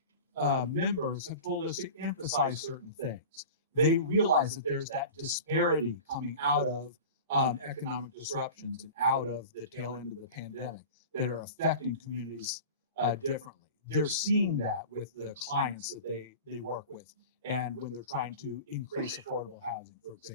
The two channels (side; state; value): both; inverted; correlation -0.35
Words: members have told us to emphasize certain things. They realize that there's that disparity coming out of economic disruptions and out of the tail end of the pandemic that are affecting communities differently. They're seeing that with the clients that they work with and when they're trying to increase affordable housing, for